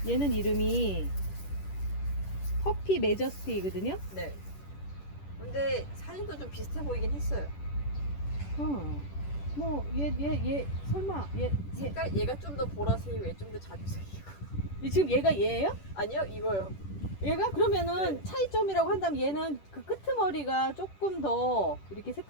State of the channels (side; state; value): right; late; 10 ms